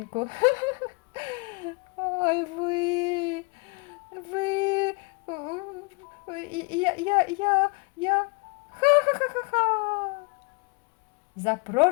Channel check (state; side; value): quieter; right; 30.8 dB